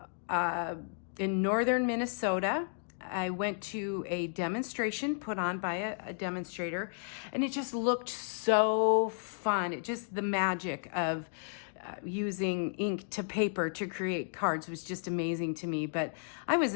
in northern Minnesota. I went to a demonstration put on by a demonstrator, and it just looked so fun. It just, the magic of using ink to paper to create cards was just amazing to me. But I was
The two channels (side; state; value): right; silent; digital silence